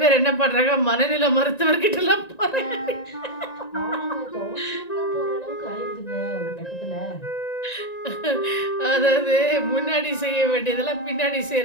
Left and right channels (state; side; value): late; right; 1.9 ms